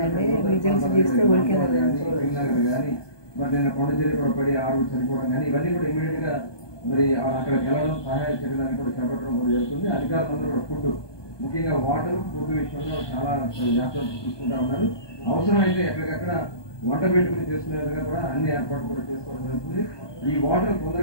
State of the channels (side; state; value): right; late; 1.2 ms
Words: కానీ మరి నేను కొండచెరి కూడా పడి ఆరుగురు చనిపోవడం కానీ ఇవన్నీ కూడా ఇమీడియట్ గా మరి అక్కడికి వెళ్ళడం సహాయ చర్యలను కూడా చేపట్టడం కూడా జరుగుతుంది. అధికారులందరూ కూడా ఫుడ్ ముఖ్యంగా వాటర్ ఫుడ్ విషయంలో చాలా జాగ్రత్తలు తీసుకుంటా ఉన్నారు. అవసరమైతే ఎక్కడికక్కడ వంట పెట్టుకుని చేసుకునే విధంగా కూడా అన్ని ఏర్పాట్లు కూడా చేసుకోవడం జరుగుతుంది. ఈ వాటర్